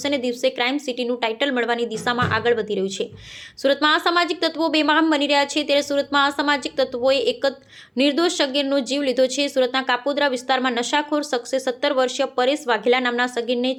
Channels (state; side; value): identical; both; correlation 1.00